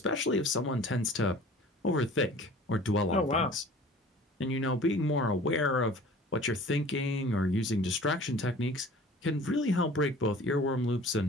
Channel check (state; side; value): normal; both; correlation 0.46